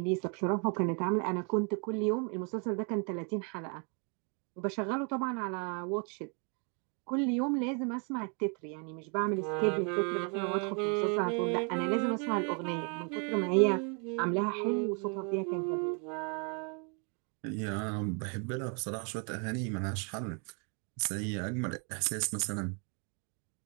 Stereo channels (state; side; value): quieter; left; 37.7 dB